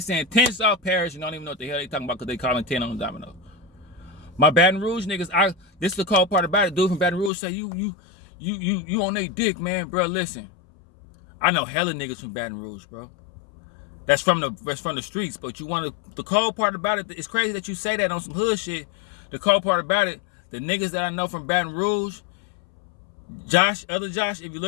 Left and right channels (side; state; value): right; drops out; at 7.3 s